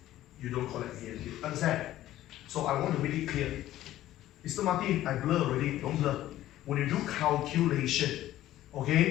You don't collect dm cube. Understand? So I want to make it clear. Mr. Martin, I blur already. Don't blur. When you do calculation,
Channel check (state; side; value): quieter; right; 14.0 dB